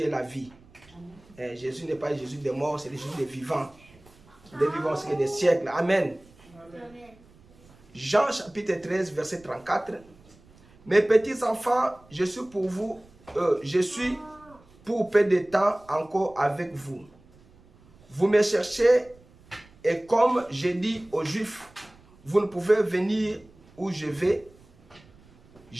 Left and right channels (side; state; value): right; noise; rumble, 27 dB below the sound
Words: la vie. Jésus n'est pas le Jésus des morts, c'est le Jésus des vivants. Des vivants, c'est des siècles. Amen. Amen. Jean chapitre 13, verset 34. Mes petits enfants, je suis pour vous, je suis pour peu de temps encore avec vous. Vous me cherchez et comme j'ai dit aux Juifs, vous ne pouvez venir où je vais.